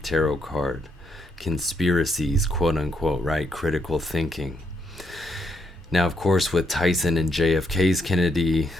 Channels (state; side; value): normal; both; correlation 0.76